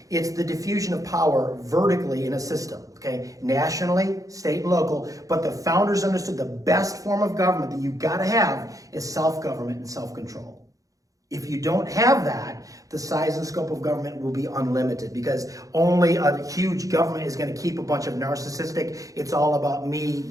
it's the diffusion of power vertically in a system, okay? Nationally, state and local, but the founders understood the best form of government that you've got to have is self-government and self-control. If you don't have that, the size and scope of government will be unlimited because only a huge government is going to keep a bunch of narcissistic, it's all about me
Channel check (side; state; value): left; late; 0.17 ms